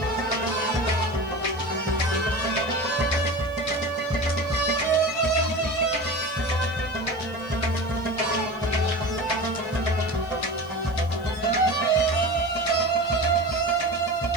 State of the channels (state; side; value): noise; left; hiss, 27 dB below the sound